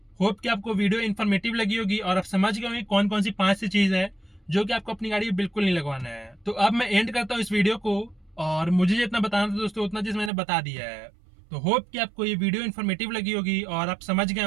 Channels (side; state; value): left; drops out; at 10.3 s